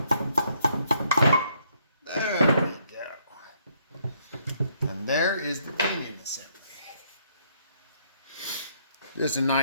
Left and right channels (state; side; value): inverted; both; correlation -0.70